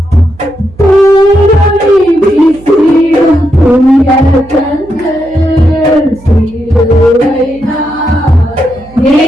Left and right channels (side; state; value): right; noise; hum, 23 dB below the sound